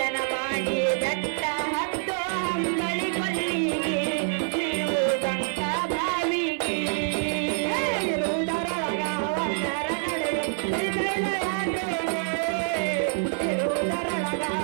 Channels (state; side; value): silent; left; 61 dB below the other